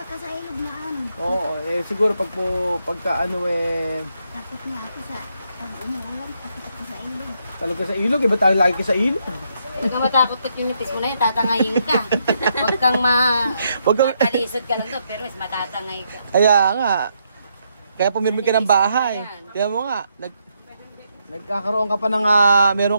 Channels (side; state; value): both; inverted; correlation -0.77